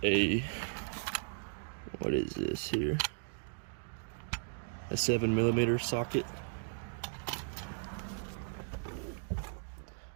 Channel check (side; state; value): left; silent; digital silence